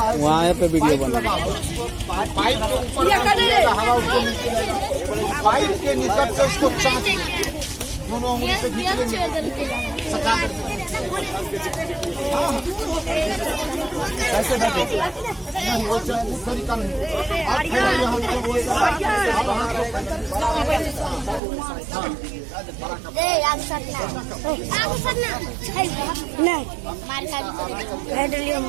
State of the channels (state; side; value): drops out; left; at 21.4 s